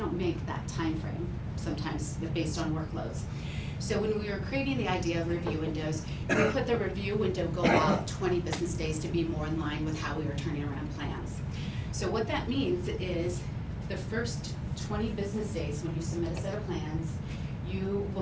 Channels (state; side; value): identical; both; correlation 1.00